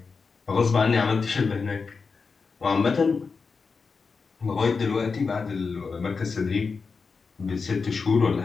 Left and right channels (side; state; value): right; quieter; 4.9 dB